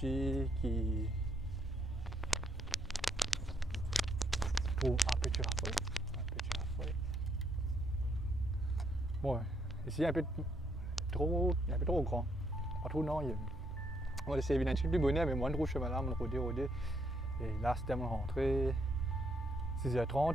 qui trouve un petit rafraîchissement. Bon, ici un peu trop grand, pas trop non. On va essayer d'éviter un plus bonnet, mais moi je trouve chemin là, mon rodé. Et là c'était mon rentrée,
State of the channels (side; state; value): both; normal; correlation 0.73